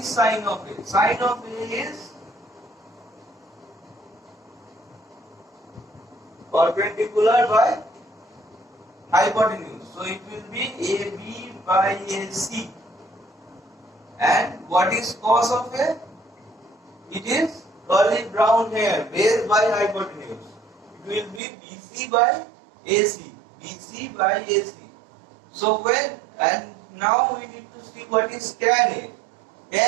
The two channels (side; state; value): left; drops out; at 21.4 s